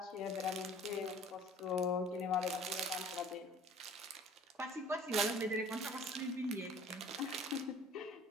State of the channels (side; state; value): both; normal; correlation 0.49